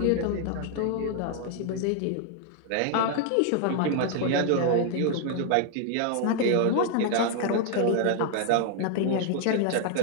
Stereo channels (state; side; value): different; both; correlation 0.00